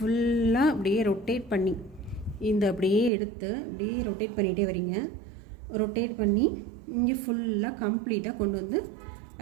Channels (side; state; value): left; drops out; at 3.1 s